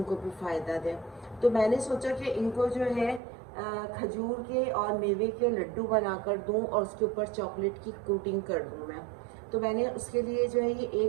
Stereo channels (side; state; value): left; drops out; at 3.2 s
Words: को भी फ़ायदा दे। तो मैंने सोचा कि इनको जो है खजूर के और मेवे के लड्डू बनाकर दूं और उसके ऊपर चॉकलेट की कोटिंग कर दूं मैं। तो मैंने उसके लिए जो है ये